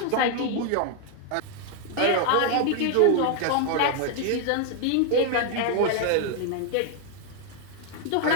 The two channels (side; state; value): both; different; correlation 0.00